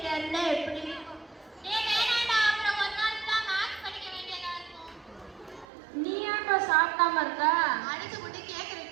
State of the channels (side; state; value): left; drops out; at 5.7 s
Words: இருந்தா எப்படி இருக்கும்? வேணாண்டா, அப்புறம் ஒரு நாள் தான் மேத்ஸ் படிக்க வேண்டியதா இருக்கும். நீ ஏன்டா சாப்பிடாம இருக்க? அடிச்சு போட்டு கேக்குற